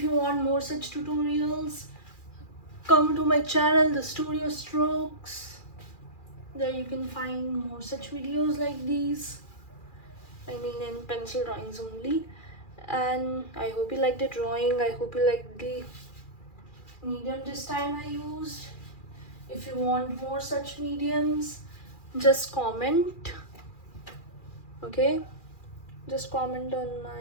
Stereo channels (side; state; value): right; late; 2.4 ms